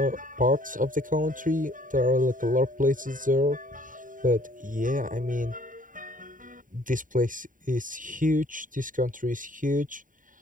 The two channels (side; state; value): left; late; 0.39 ms